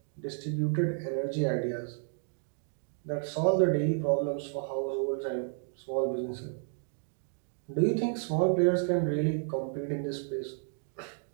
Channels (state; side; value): silent; left; 57 dB below the other